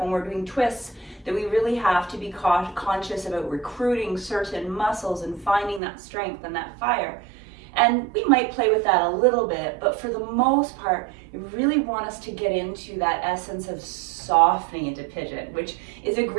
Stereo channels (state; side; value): drops out; left; at 5.8 s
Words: when we're doing twists, that we really have to be conscious about recruiting certain muscles and finding that strength and that fire. And we might play with that a little bit, but for the most part, we really want us to get into that essence of softening into Pigeon, which is a